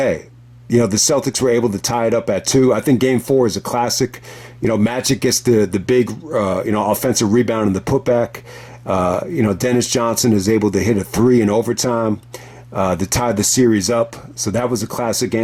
the Celtics were able to tie it up at 2. I think Game 4 is a classic. Magic gets the big, offensive rebound and the putback. Dennis Johnson is able to hit a 3 in overtime to tie the series up. So that was a classic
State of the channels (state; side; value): identical; both; correlation 1.00